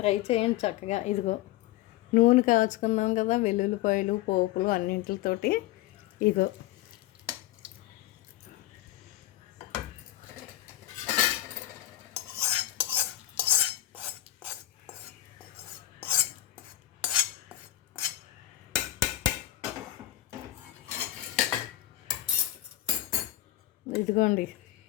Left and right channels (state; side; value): quieter; right; 14.6 dB